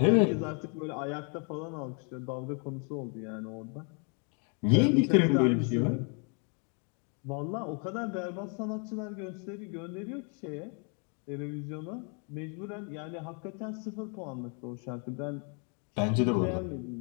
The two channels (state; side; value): quieter; right; 38.4 dB